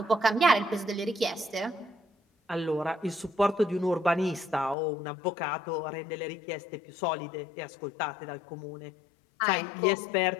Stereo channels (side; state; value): right; drops out; at 4.8 s